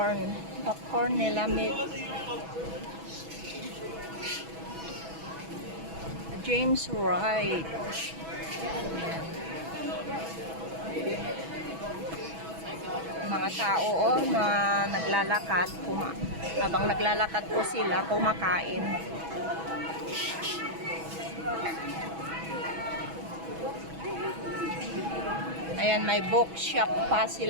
Popcorn nila meat. James Wright. Mga tao, oh, na naglalakad. Habang naglalakad po sila, kumakain. Ayan, may bookshop pa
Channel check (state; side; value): late; left; 6.1 ms